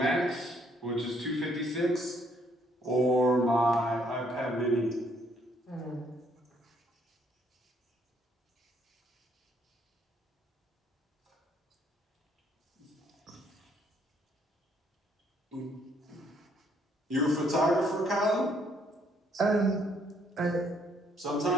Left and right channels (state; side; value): normal; both; correlation 0.68